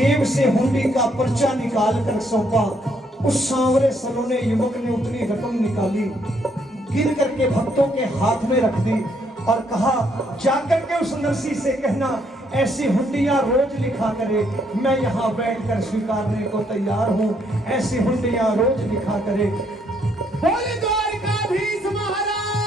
से हुंडी का पर्चा निकाल कर सौंपा। उस सांवरे सलोने युवक ने उतनी रकम निकाली, गिन करके भक्तों के हाथ में रख दी और कहा, जाकर के उस नरसी से कहना, ऐसी हुंडियां रोज लिखा करे, मैं यहां बैठकर स्वीकारने को तैयार हूं, ऐसी हुंडियां रोज लिखा करे। बोले द्वारिकाधीश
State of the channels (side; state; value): both; normal; correlation 0.71